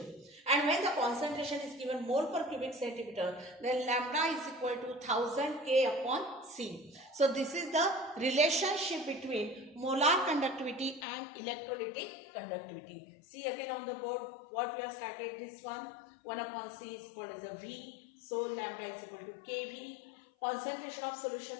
And when the concentration is given mole per cubic centimeter, then lambda is equal to 1000 K upon C. So this is the relationship between molar conductivity and electrolytic conductivity. See again on the board what we have started, this one 1 upon C is called as a V. So lambda is equal to KV. Concentration of solution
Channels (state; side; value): drops out; right; at 11.1 s